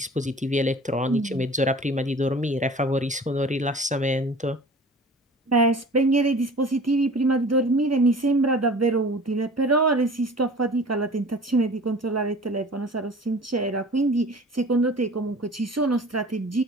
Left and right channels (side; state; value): both; normal; correlation 0.43